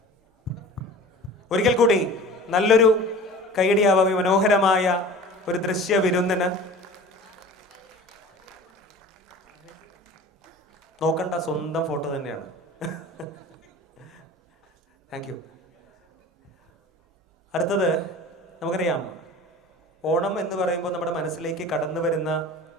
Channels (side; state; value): both; normal; correlation 0.40